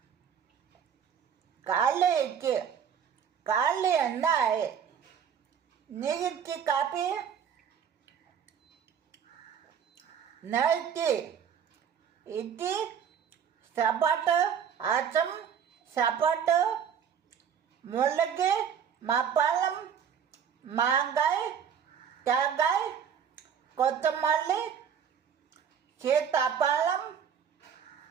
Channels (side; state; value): left; quieter; 7.9 dB